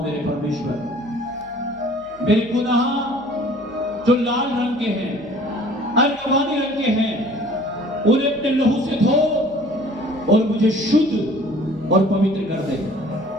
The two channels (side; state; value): right; noise; hum, 26 dB below the sound